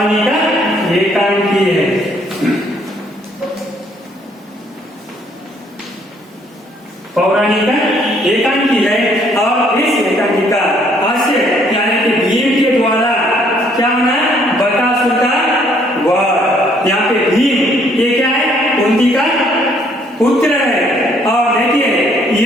एकांकी है। पौराणिक एकांकी है। और इस एकांकी का हास्य यानी कि भीम के द्वारा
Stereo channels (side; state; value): both; normal; correlation 0.65